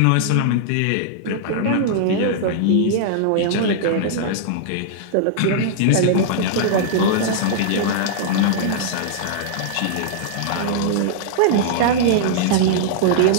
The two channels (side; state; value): both; different; correlation -0.01